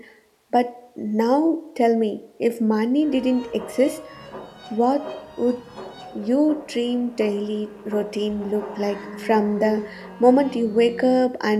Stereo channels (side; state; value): both; identical; correlation 1.00